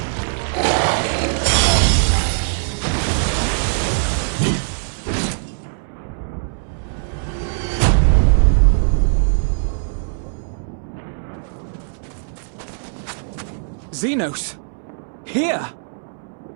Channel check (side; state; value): left; silent; 65 dB below the other